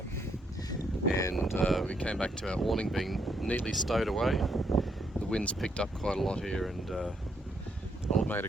and we came back to our awning being neatly stowed away. The wind's picked up quite a lot here, and old mate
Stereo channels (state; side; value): normal; both; correlation 0.75